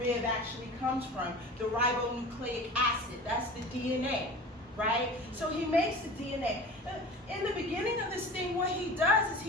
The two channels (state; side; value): normal; both; correlation 0.37